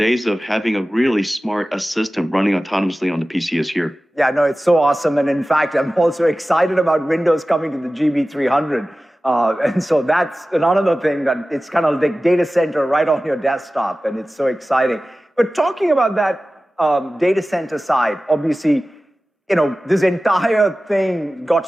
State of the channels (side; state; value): both; normal; correlation 0.96